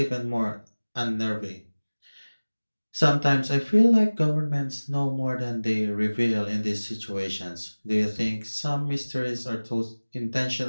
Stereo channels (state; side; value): inverted; both; correlation -1.00